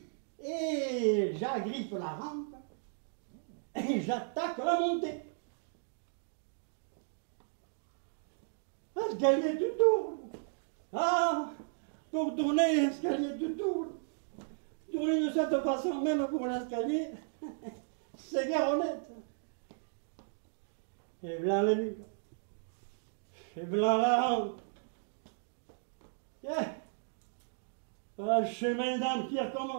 Et j'agrippe la rampe et j'attaque la montée. L'escalier tout tourne. Ah, pour tourner, l'escalier tout tourne. Tourner de cette façon, même pour l'escalier, c'est guère honnête. Et voilà le mur. Et voilà la rampe. Yeah. Voilà le chemin d'âme qui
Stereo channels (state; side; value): silent; left; digital silence